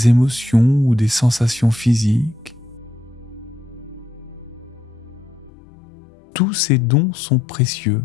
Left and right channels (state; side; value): drops out; right; at 5.5 s